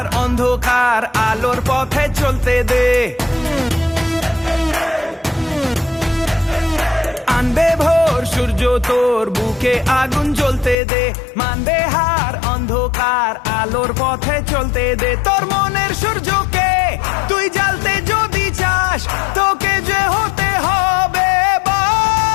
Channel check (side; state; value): right; drops out; at 10.8 s